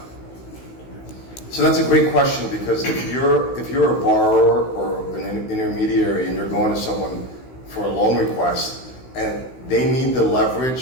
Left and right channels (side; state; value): right; late; 16 ms